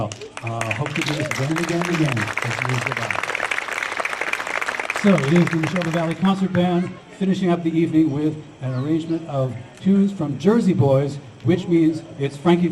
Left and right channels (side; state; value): both; identical; correlation 1.00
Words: Hope to do this again and again and again. Goodbye. So it is the Nahoba Valley Concert Band finishing up the evening with an arrangement of tunes from Jersey Boys, which means it's Frankie